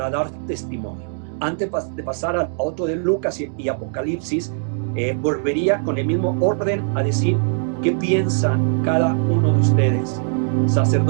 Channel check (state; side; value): silent; left; digital silence